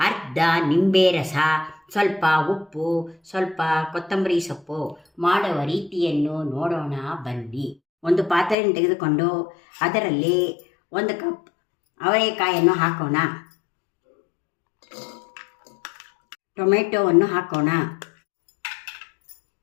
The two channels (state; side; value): drops out; right; at 8.6 s